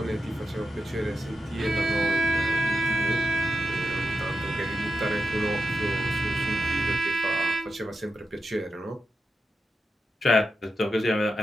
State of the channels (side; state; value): both; normal; correlation 0.88